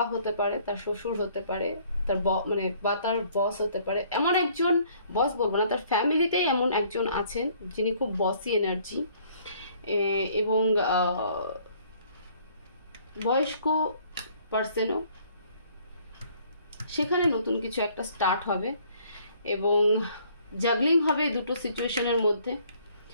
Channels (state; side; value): inverted; both; correlation -0.60